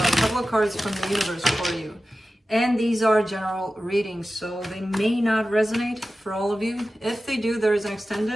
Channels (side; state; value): both; normal; correlation 0.94